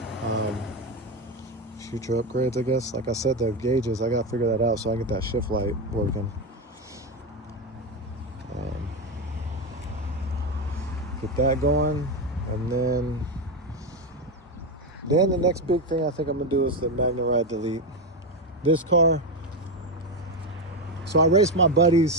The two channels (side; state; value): both; normal; correlation 0.11